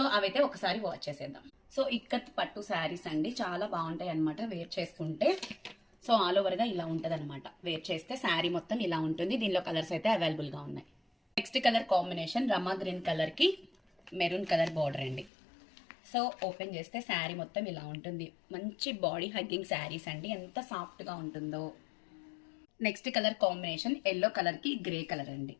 అవైతే ఒకసారి వాచ్ చేసేద్దాం. సో ఇక్కత్ పట్టు శారీస్ అండి, చాలా బాగుంటాయి అనమాట వేర్ చేసుకుంటే. సో ఆల్ ఓవర్గా ఇలా ఉంటుంది అనమాట. వేర్ చేస్తే శారీ మొత్తం ఇలా ఉంటుంది. దీనిలో కలర్స్ అయితే అవైలబుల్గా ఉన్నాయి. నెక్స్ట్ కలర్ కాంబినేషన్ రమా గ్రీన్ కలర్కి మెరూన్ కలర్ బార్డర్ అండి. సో ఓపెన్ చేస్తే శారీ మొత్తం ఇలా ఉంటుంది. మంచి బాడీ హగ్గింగ్ శారీస్ అండి, ఎంత సాఫ్ట్గా ఉంటుందో. నెక్స్ట్ కలర్ కాంబినేషన్ ఎల్లో కలర్కి గ్రే కలర్ అండి.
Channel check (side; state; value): right; drops out; at 15.3 s